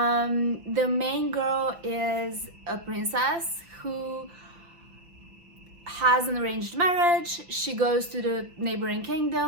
main girl is a princess who has an arranged marriage. She goes to the neighboring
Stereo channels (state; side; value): late; left; 5.8 ms